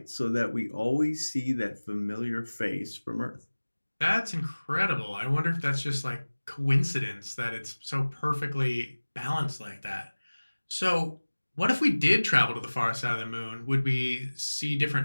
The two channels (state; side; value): inverted; both; correlation -1.00